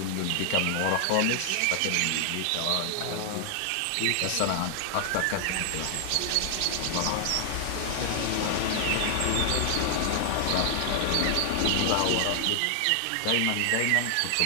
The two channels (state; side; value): different; both; correlation 0.00